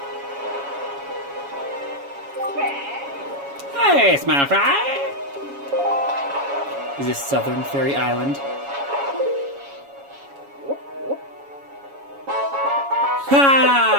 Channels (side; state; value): left; late; 7.2 ms